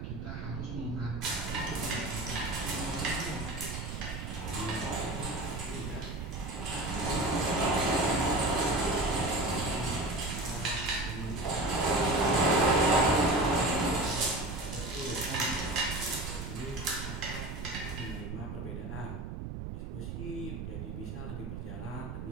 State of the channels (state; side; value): noise; right; rumble, 7 dB below the sound